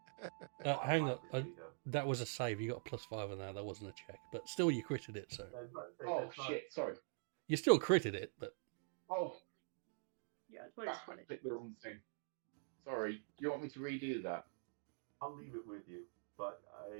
hang on. That was a save. You got a +5 on that. That wasn't a check. But still, you critted it, so. Oh shit! Sorry. You still critted it, but. Oh, Yeah, it's I clicked the wrong thing. Sorry. You want me to redo that? I'll leave it with you. But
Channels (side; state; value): left; silent; digital silence